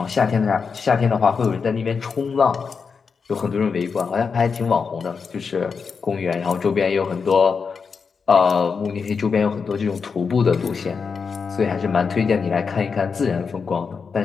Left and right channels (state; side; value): quieter; right; 5.5 dB